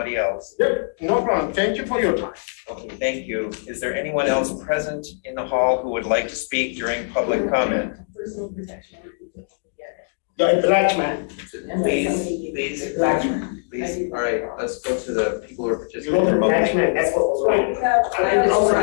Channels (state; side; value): silent; right; 64 dB below the other